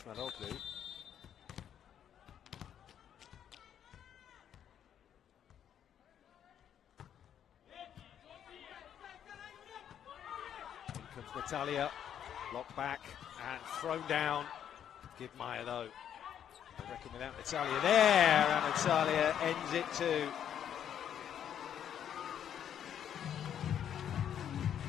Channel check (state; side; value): quieter; right; 9.4 dB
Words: Natalia, locked back and thrown down. Give Maya though. I reckon without Natalia there, and Natalia ends it too.